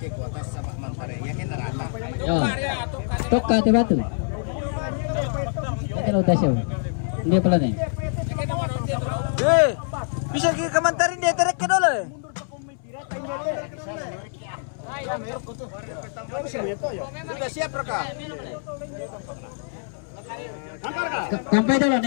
kuotas sa mangpare. Yakin na rata. Yo. Toka te batu. Yakin udah siya. Hindi pala na. Bisa kamantarin dia terek ke dulu. Sudah siap Raka? Sampai dulu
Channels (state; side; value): silent; right; 62 dB below the other